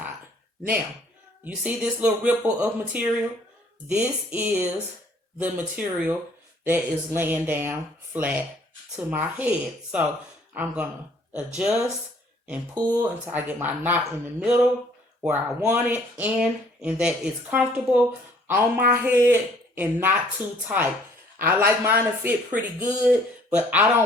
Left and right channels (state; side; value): normal; both; correlation 0.59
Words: Now, you see this little ripple of material? This is the material that is laying down flat to my head. So I'm going to adjust and pull until I get my knot in the middle where I want it, and that it's comfortable on my head and not too tight. I like mine to fit pretty good, but I